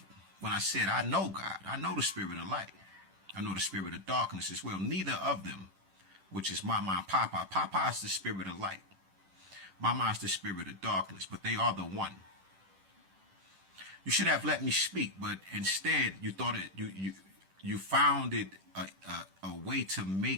when I said I know God. I know the spirit of light. I know the spirit of darkness as well. Neither of them, which is Mama and Papa. Papa is the spirit of light. Mama is the spirit of darkness, but they are the one. You should have let me speak, but instead you thought you found it a way to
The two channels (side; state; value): left; late; 10 ms